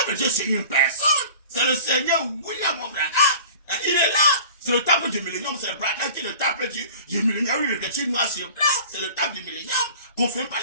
de Dieu, c'est une personne. C'est le Seigneur William Branham. Il est là. C'est le temple du millénium, c'est le Branham qui est le temple du millénium. Il est écrit noir sur blanc, c'est le temple du millénium. Confirme par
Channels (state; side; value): inverted; both; correlation -0.43